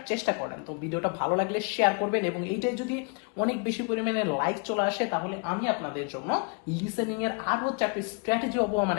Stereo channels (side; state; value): right; quieter; 35.2 dB